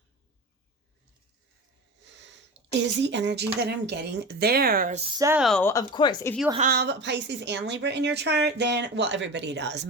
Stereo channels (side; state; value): both; normal; correlation 0.30